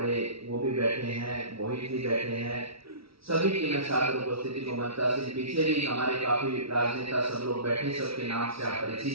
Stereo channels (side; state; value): left; late; 0.76 ms